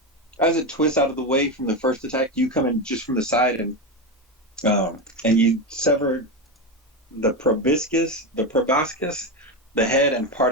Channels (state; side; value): normal; both; correlation 0.15